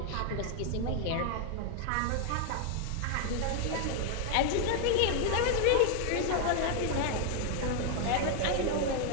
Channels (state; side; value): different; both; correlation 0.00